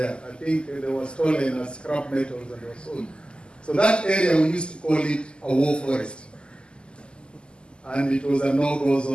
I think they were stolen as scrap metals and they were sold. So that area, we used to call it a war forest. And it was a no-go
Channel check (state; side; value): late; right; 0.049 ms